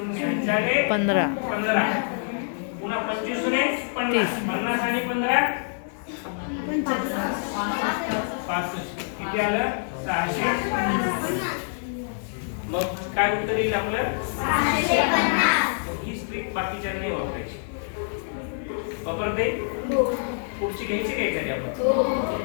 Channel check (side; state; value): right; silent; digital silence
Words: अच्छा रे 15. 15. पुन्हा 25 ने 50. 50 आणि 15 65. किती आलं? 650. मग काय उत्तर येईल आपलं? 650. ही स्ट्रिक बाकीच्या नाही वापरायची. वापरते? पुढची घ्यायची काय एखादी आपण?